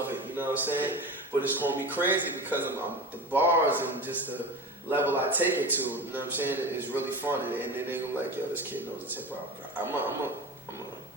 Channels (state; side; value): normal; both; correlation 0.30